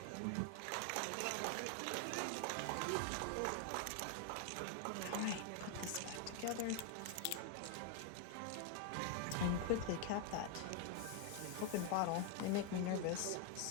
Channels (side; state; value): both; different; correlation 0.01